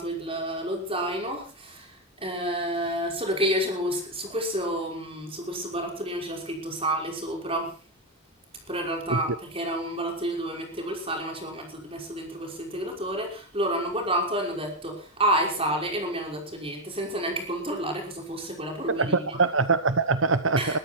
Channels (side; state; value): both; normal; correlation 0.02